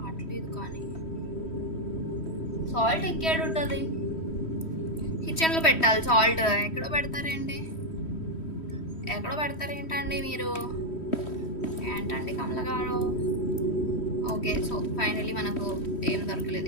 కానీ సాల్ట్ ఎక్కడ ఉంటుంది? కిచెన్లో పెట్టాలి సాల్ట్. ఎక్కడో పెడతారేంటి? ఎక్కడో పెడతారేంటండి మీరు? ఏంటండి కమల గారు? ఓకే సో ఫైనలీ మనకు ఏం దొరకలేదు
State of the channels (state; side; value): late; right; 3.1 ms